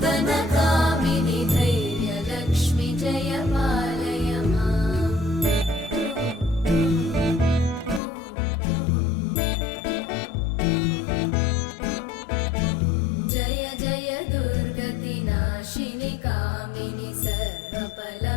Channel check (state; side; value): drops out; right; at 8.0 s